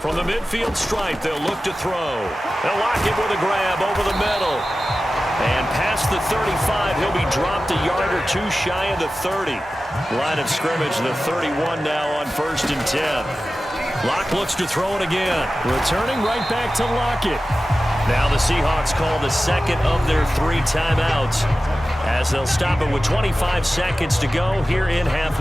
the midfield stripe, they'll look to throw. They'll lock it with a grab over the middle. And past the 35, he'll be dropped a yard or two shy of the 30. Line of scrimmage, the 31 now on 1st and 10. Locke looks to throw it again. Returning right back to Lockett. Now the Seahawks call the 2nd of their 3 timeouts as they'll stop it with 25 seconds to go here in half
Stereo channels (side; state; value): both; normal; correlation 0.95